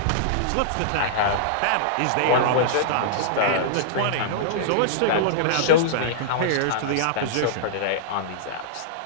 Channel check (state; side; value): different; both; correlation -0.02